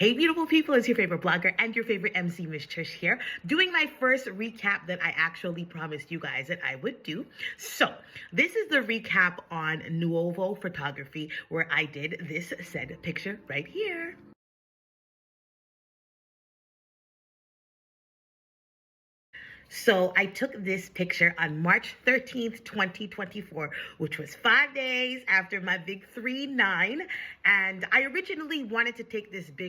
Hey beautiful people, it's your favorite blogger and your favorite MC, Miss Trish here, doing my first recap that I actually promised you guys that I would do. So this is the recap on Nuovo photography where I did this said picture right here. So I took this picture on March 13th, 2024, which was 5 days after my big 3-9. And I originally wanted to take this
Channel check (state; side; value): identical; both; correlation 1.00